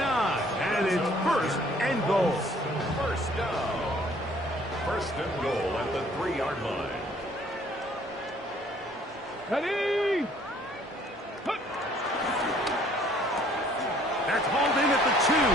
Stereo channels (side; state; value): both; normal; correlation 0.59